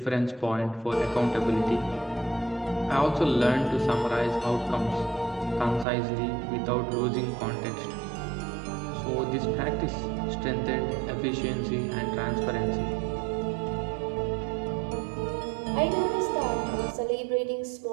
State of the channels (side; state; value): left; drops out; at 5.9 s